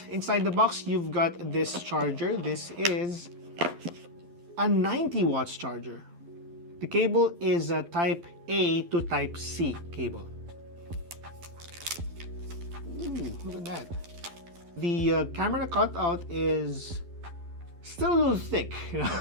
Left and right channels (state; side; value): late; left; 12 ms